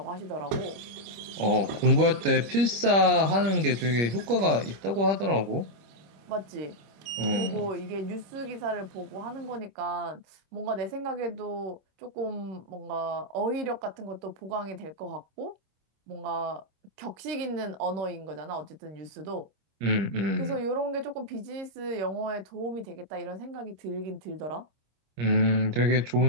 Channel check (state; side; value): late; left; 25 ms